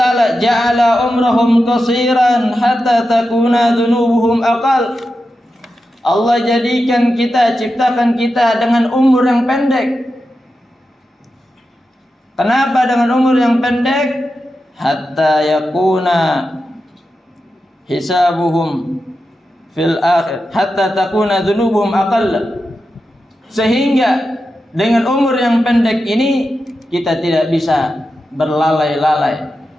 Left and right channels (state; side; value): normal; both; correlation 0.90